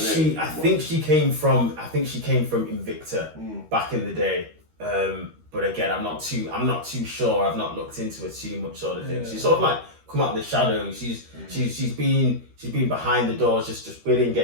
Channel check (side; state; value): left; late; 13 ms